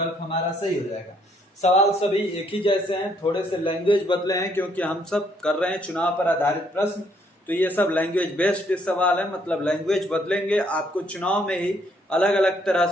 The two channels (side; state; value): both; normal; correlation 0.69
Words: हमारा सही हो जाएगा। सवाल सभी एक ही जैसे हैं, थोड़े से लैंग्वेज बदले हैं क्योंकि हम सब कर रहे हैं चुनाव पर आधारित प्रश्न, तो ये सब लैंग्वेज बेस्ड सवाल है, मतलब लैंग्वेज बदलेंगे। आपको चुनाव में ही अलग अलग तरह